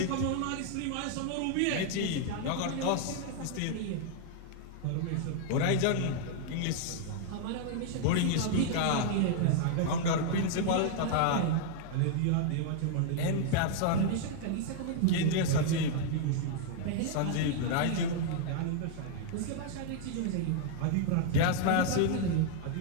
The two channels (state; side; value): different; both; correlation 0.00